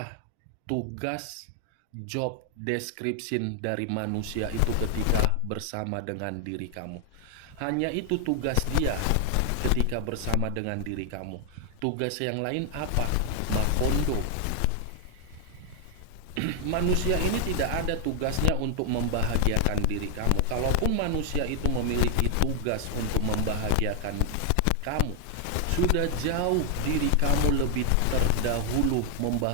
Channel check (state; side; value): different; both; correlation 0.00